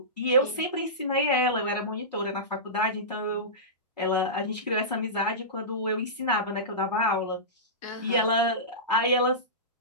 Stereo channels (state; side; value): normal; both; correlation -0.19